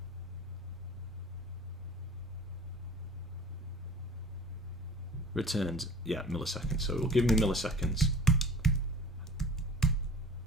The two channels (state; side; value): normal; both; correlation 0.45